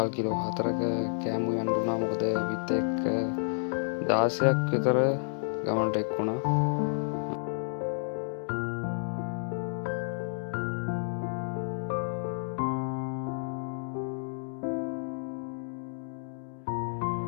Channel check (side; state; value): right; silent; digital silence